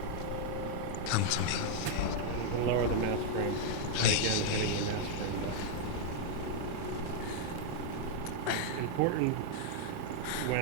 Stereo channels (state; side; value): different; both; correlation 0.00